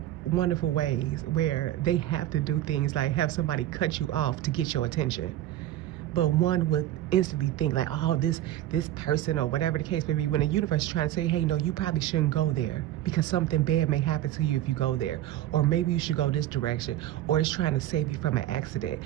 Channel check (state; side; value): quieter; left; 13.3 dB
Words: wonderful ways where they have to do things like have somebody cut you off to get your attention. But one would instantly think like, oh, this person, or whatever the case may be, when the universe is trying to say, hey, no, you probably shouldn't go there, because something bad may happen to you if you go there, or maybe you should go this direction, or it's trying to save you from an accident.